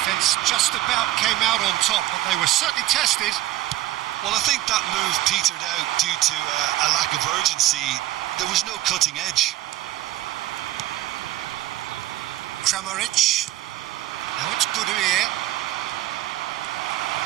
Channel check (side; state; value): left; quieter; 15.4 dB